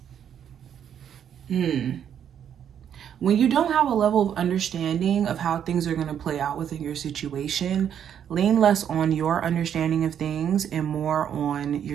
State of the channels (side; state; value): left; quieter; 9.0 dB